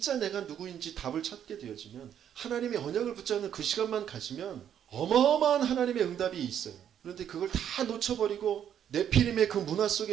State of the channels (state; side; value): quieter; left; 9.5 dB